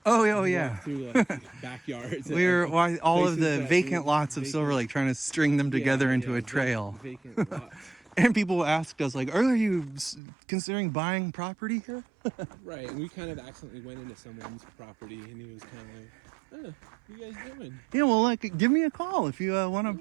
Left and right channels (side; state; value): left; drops out; at 10.2 s